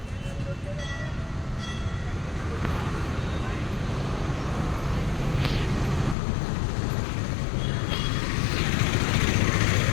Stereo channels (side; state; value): right; drops out; at 6.2 s